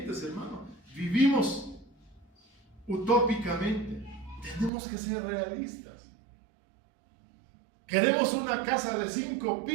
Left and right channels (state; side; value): drops out; left; at 4.7 s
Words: hermano, vivimos utópicamente. Tenemos que ser realistas. Queremos una casa de 5